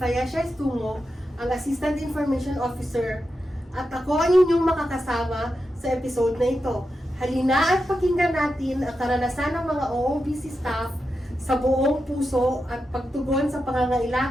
Estungo, ang Assistant Information Officer, at ako ang inyong makakasama sa episode na ito. Halina at pakinggan natin ang karanasan ng mga OOBC staff sa buong puso at pagtugon sa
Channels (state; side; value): normal; both; correlation 0.89